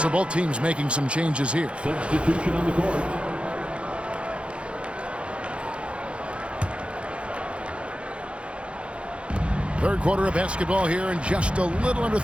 So both teams making some changes here. Substitution on the court. Third quarter of basketball here, and just a little under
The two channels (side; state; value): left; late; 0.059 ms